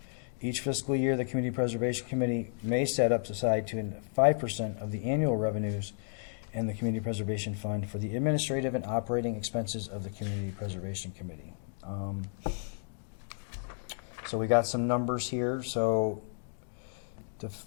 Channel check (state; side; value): silent; right; digital silence